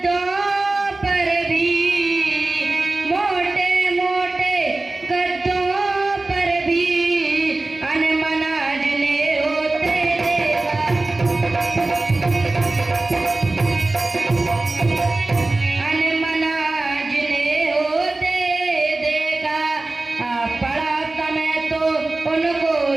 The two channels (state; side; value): quieter; left; 3.1 dB